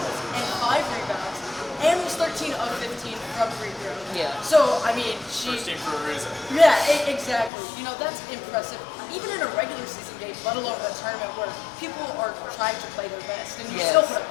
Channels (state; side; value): drops out; right; at 7.5 s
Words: and 5 rebounds, and was 13 of 15 from free throw. Yeah. So, I mean, First team for a reason. Yeah, exactly. That's impressive. Even in a regular season game, let alone a tournament where people are trying to play their best, and you still put up